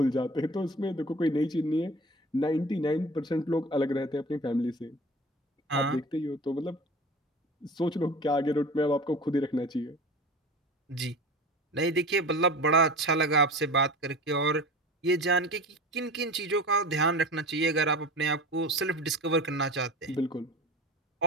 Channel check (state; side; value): normal; both; correlation 0.35